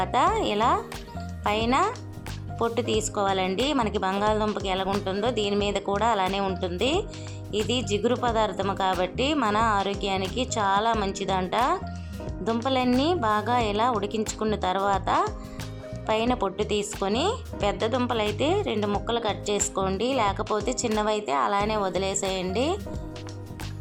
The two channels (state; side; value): identical; both; correlation 1.00